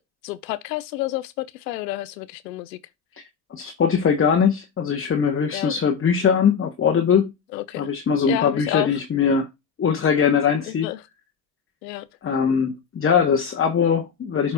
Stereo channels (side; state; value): right; quieter; 6.7 dB